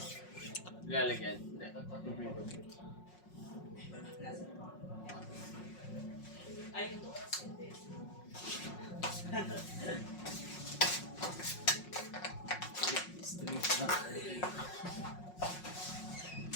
Nilalagyan? Hindi. Ay, ito kasi hindi.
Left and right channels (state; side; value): late; right; 5.5 ms